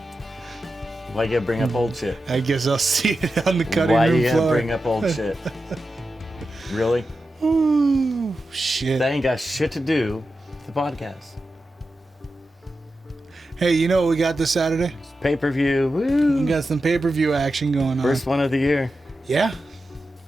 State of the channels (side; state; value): both; normal; correlation 0.91